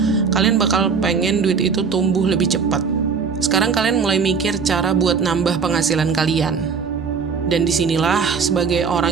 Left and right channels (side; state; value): left; quieter; 5.6 dB